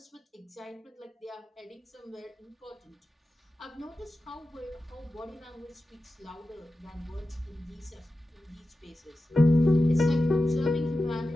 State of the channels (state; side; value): normal; both; correlation 0.93